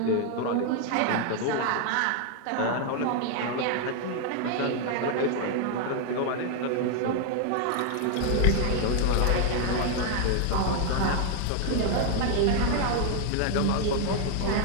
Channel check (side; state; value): both; different; correlation 0.00